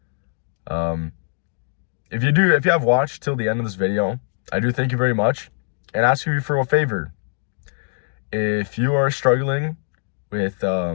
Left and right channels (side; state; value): right; silent; 58 dB below the other